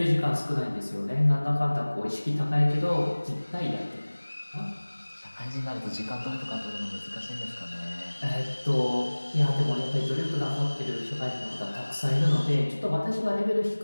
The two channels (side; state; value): both; inverted; correlation -1.00